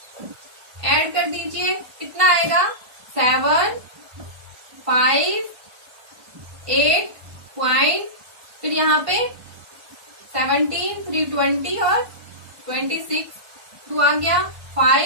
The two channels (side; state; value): left; late; 1.3 ms